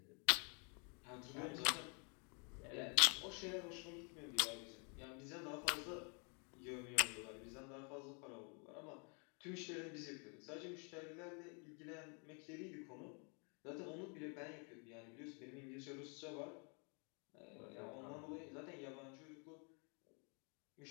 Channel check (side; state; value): right; quieter; 36.8 dB